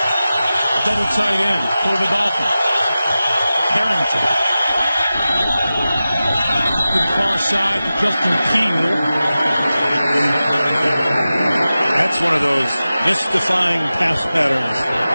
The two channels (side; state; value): both; inverted; correlation -0.95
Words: double tight end for the Dolphins. Harrington. To the far side to Justin Keel. That's one of those mystifying pass patterns